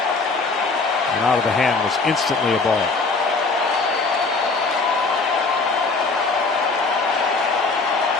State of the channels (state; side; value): quieter; right; 4.0 dB